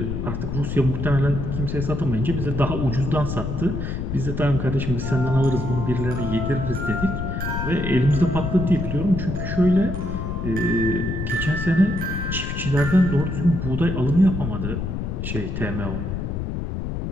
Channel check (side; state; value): left; noise; rumble, 3 dB below the sound